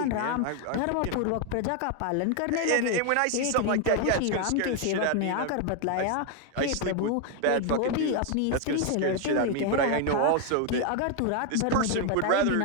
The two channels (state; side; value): different; both; correlation 0.01